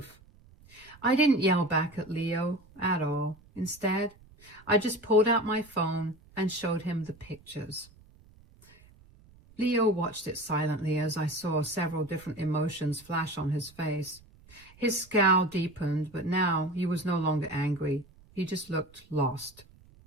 I didn't yell back at Leo at all. Instead, I just pulled out my phone and showed him the pictures. Leo watched it silently as I saw several different emotions flash on his face. His scowl deepened, but now he was no longer angry. He just looked lost.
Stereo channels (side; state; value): right; noise; rumble, 26 dB below the sound